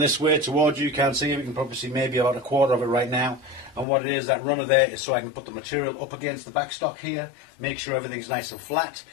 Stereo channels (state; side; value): drops out; right; at 3.9 s